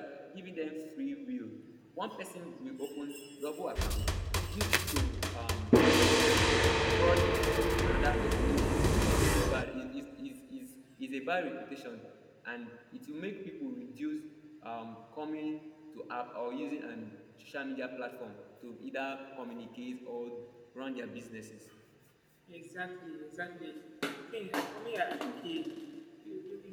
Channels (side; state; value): both; identical; correlation 1.00